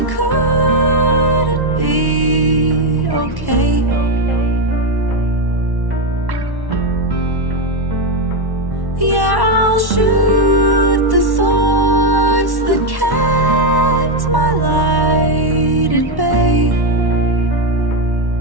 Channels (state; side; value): late; left; 1.1 ms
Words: couldn't be okay. Yeah, I'll shoot the thoughts that kept my light at bay.